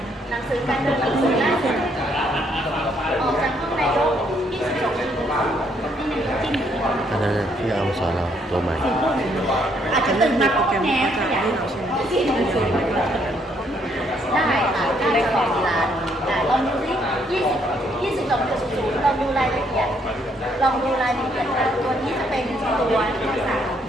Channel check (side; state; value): both; normal; correlation 0.70